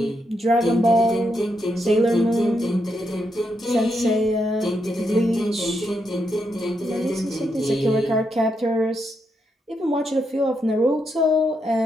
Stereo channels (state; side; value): normal; both; correlation 0.81